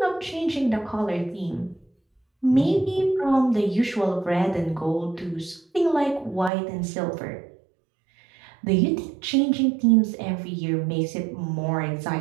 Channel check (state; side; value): drops out; left; at 6.5 s